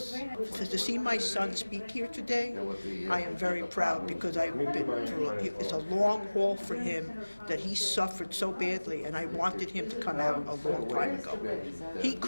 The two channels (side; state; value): both; inverted; correlation -1.00